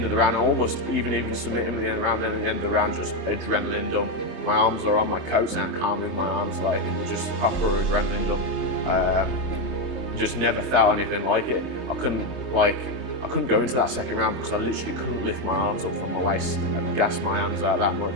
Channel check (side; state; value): right; late; 3.3 ms